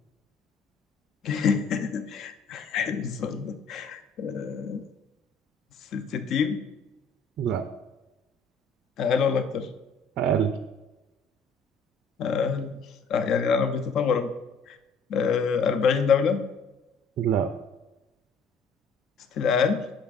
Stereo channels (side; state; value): right; quieter; 3.6 dB